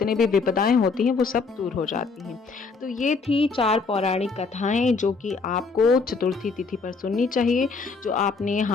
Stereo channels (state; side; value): quieter; right; 4.5 dB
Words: भी विपदाएं होती हैं, वो सब दूर हो जाती हैं। तो ये थी 4 पौराणिक कथाएं जो कि आपको चतुर्थी तिथि पर सुननी चाहिए। जो आपने